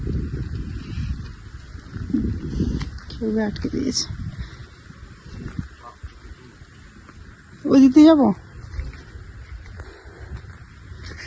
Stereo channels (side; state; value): both; identical; correlation 1.00